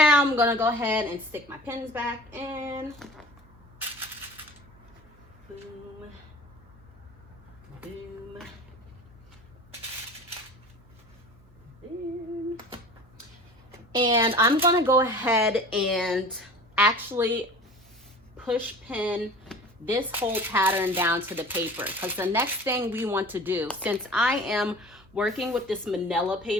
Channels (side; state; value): right; noise; hum, 29 dB below the sound